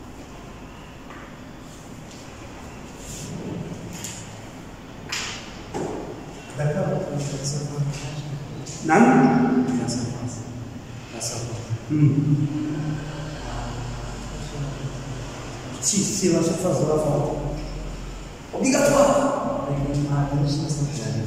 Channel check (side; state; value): both; identical; correlation 1.00